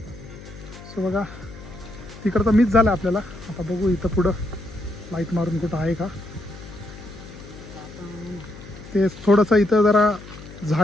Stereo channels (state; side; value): noise; left; hum, 16 dB below the sound